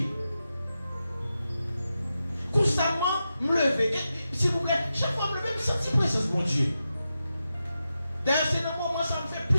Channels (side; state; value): both; inverted; correlation -0.90